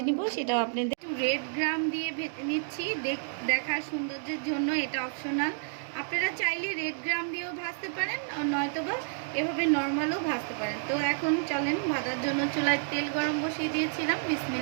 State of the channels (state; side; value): silent; left; digital silence